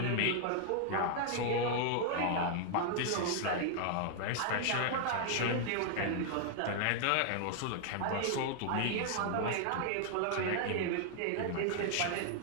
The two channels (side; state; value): both; different; correlation 0.00